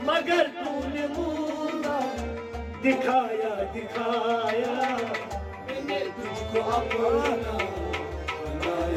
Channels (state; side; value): identical; both; correlation 1.00